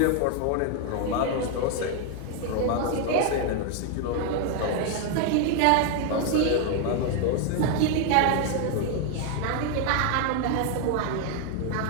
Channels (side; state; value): both; different; correlation 0.01